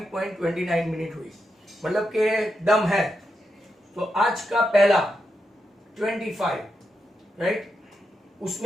मिनट हुई, मतलब के दम है. तो आज का पहला 25, राइट,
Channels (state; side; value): normal; both; correlation 0.86